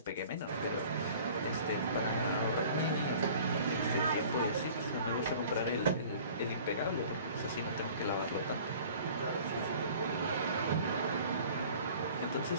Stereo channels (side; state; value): both; inverted; correlation -0.47